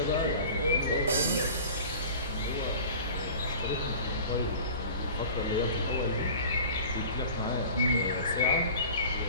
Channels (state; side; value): inverted; both; correlation -0.40